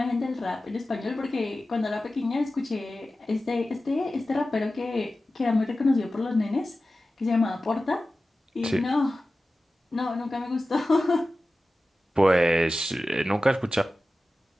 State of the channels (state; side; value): normal; both; correlation 0.95